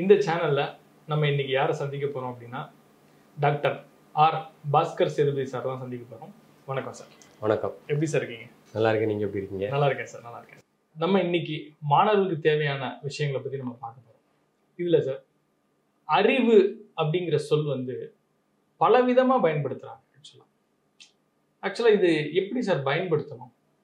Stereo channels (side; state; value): both; identical; correlation 1.00